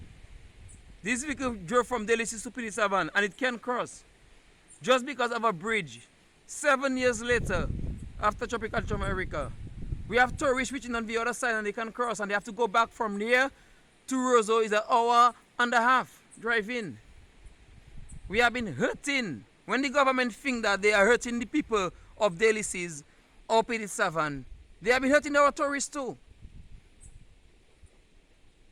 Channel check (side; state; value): both; identical; correlation 1.00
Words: This vehicle drove from Delices to Pidit-Savan, and it can cross just because of a bridge. 7 years later, after Tropical America, we have tourists reaching on the other side and they can cross, and they have to go back from there to Roseau. Is an hour and a half drive in. We have been hurting. When the government think that they are hurting the people of Delices or Pidit-Savan, they have been hurting our tourists too.